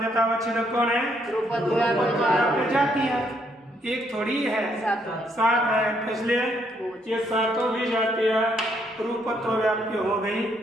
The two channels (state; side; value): normal; both; correlation 0.72